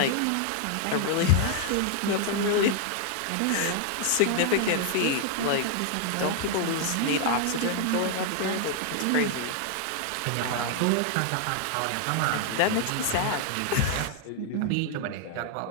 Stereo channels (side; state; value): both; different; correlation 0.00